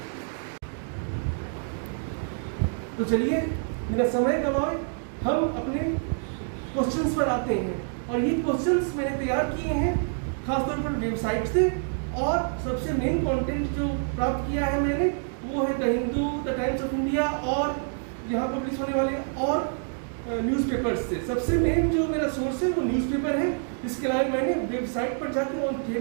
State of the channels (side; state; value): left; silent; 60 dB below the other